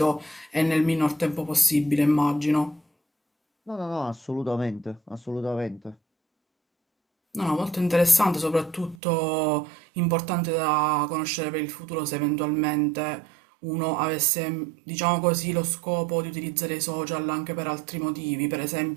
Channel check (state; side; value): drops out; left; at 9.0 s